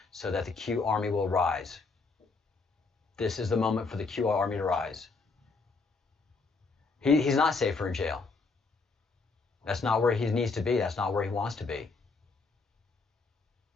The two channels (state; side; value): quieter; right; 4.2 dB